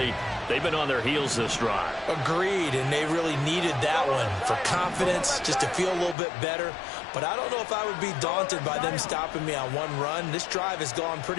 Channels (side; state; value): right; drops out; at 6.2 s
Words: they've been on their heels this drive. Agreed, and they really needed that one for confidence, just to feel a little bit better. But I don't know if I would be daunted by them stopping me on one run. This drive has gone